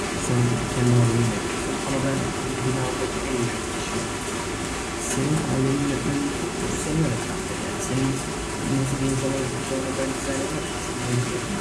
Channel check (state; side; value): identical; both; correlation 1.00